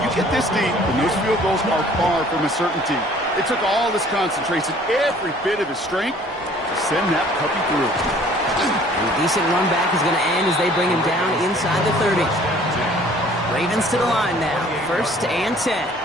you get this deep, and those field goals are far from a certainty. It took all his concentration, every bit of his strength, to send that puppy through. And a decent run back is going to end as they bring him down inside the 30. Ravens to the line now. 1st and 10.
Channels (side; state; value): both; normal; correlation 0.54